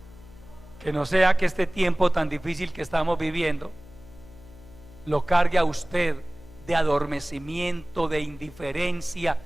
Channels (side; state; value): left; noise; hum, 21 dB below the sound